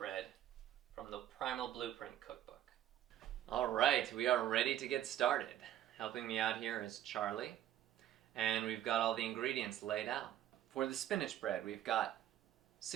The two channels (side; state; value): left; quieter; 12.1 dB